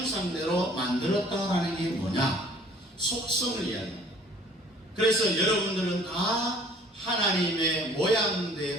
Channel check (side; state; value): both; normal; correlation 0.53